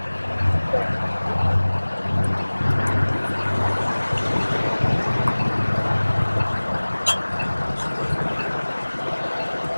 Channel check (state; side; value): inverted; both; correlation -1.00